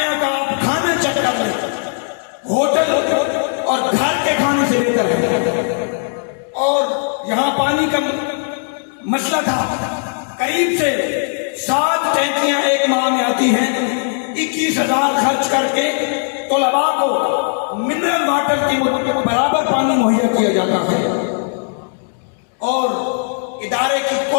کا آپ کھانا چیک کر لیں, ہوٹل اور گھر کے کھانے سے بہتر ہے. اور یہاں پانی کا مسئلہ تھا, قریب سے 7 ٹینکیاں ایک ماہ میں آتی ہیں. 21,000 خرچ کر کے طلباء کو منرل واٹر کی برابر پانی مہیا کیا جاتا ہے. اور ادارے کی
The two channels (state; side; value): silent; right; 64 dB below the other